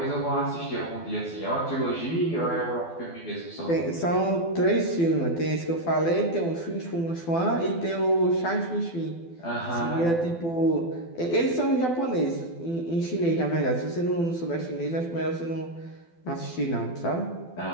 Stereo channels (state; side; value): late; right; 12 ms